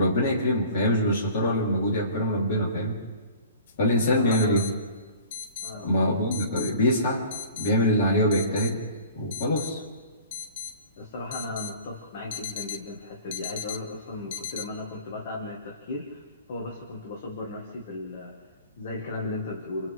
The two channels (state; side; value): inverted; both; correlation -0.44